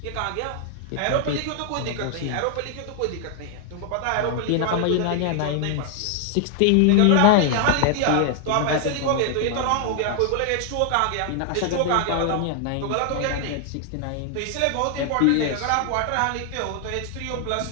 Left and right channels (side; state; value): both; different; correlation 0.00